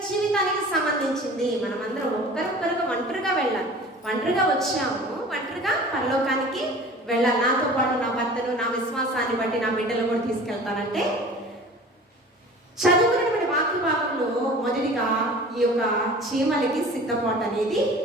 జీవితానికి సంబంధించింది. మనమందరం ఒక్కరొక్కరుగా ఒంటరిగా వెళ్ళాలి. ఒంటరిగా వచ్చాము, ఒంటరిగా పరలోకానికి వెళ్ళాలి. నాతో పాటు నా భర్తను, నా విశ్వాసాన్ని బట్టి నా బిడ్డలు కూడా తీసుకెళ్తానంటే చదువుకున్నటువంటి వాక్య భాగంలో మొదటిగా ఈ యొక్క చీమలకి సిద్ధపాటు అనేది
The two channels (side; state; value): both; normal; correlation 0.42